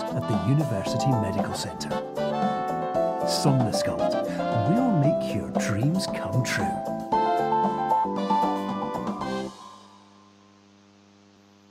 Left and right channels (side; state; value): both; identical; correlation 1.00